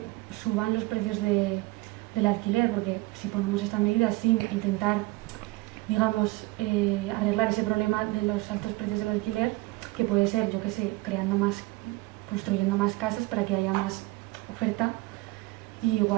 suban los precios del alquiler, porque si ponemos esta medida sin intentar, digamos, arreglar ese problema de los altos precios del alquiler, que puede ser, yo qué sé, construyendo más casas para que haya más oferta, y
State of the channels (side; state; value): left; quieter; 22.2 dB